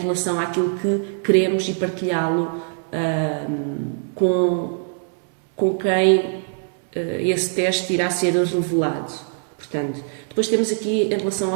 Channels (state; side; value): silent; left; digital silence